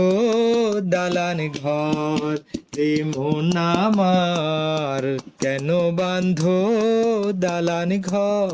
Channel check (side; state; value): both; identical; correlation 1.00